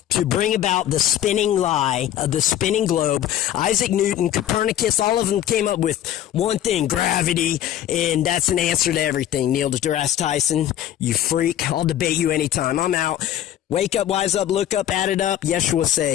To bring about the spinning lie of the spinning globe. Isaac Newton, Copernicus, all of them came up with one thing: gravity. easy, and that's an answer to everything. Neil deGrasse Tyson, you freak. I'll debate you anytime. I'm out. Wake up, wise up, look up, add it up. Yeshua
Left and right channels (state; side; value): quieter; right; 11.5 dB